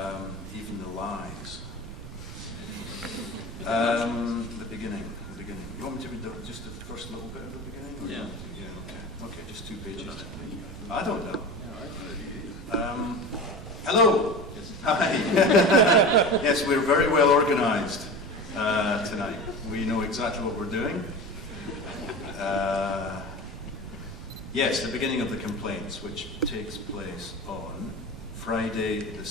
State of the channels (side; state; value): right; noise; rumble, 12 dB below the sound